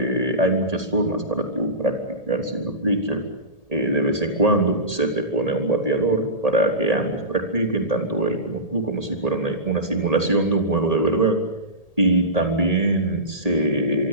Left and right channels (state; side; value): late; right; 1.8 ms